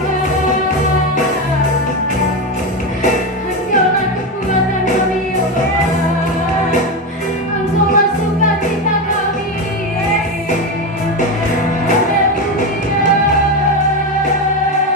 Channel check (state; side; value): normal; both; correlation 0.15